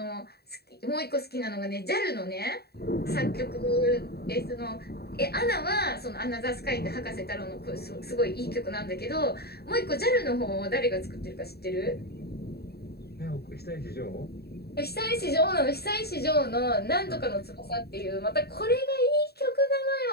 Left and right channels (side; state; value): right; late; 0.47 ms